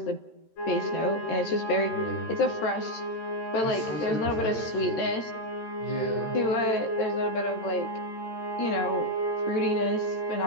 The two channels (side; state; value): right; late; 13 ms